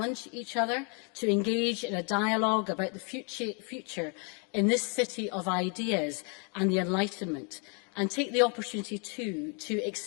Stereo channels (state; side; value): quieter; right; 35.9 dB